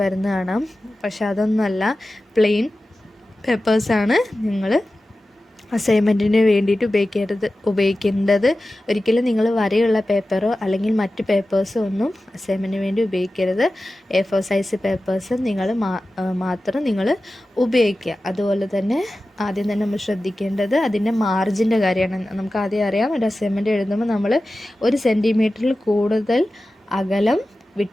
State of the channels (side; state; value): both; normal; correlation 0.95